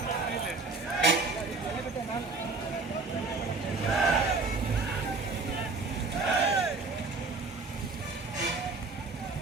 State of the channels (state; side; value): quieter; left; 3.7 dB